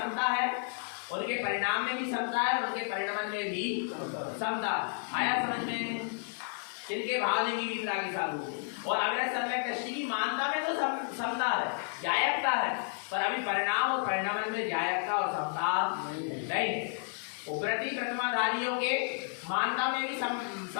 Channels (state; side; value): silent; right; 57 dB below the other